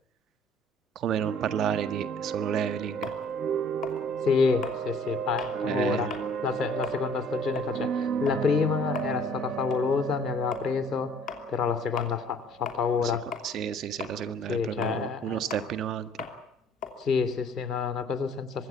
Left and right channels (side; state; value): both; normal; correlation 0.55